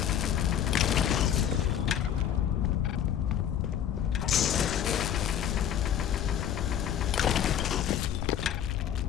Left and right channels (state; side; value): quieter; right; 9.7 dB